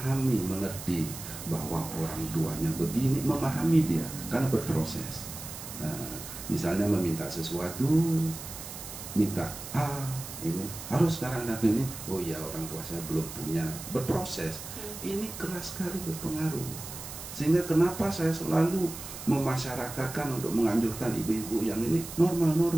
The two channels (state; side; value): noise; right; hiss, 11 dB below the sound